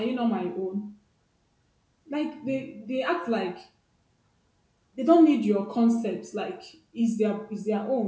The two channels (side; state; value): both; identical; correlation 1.00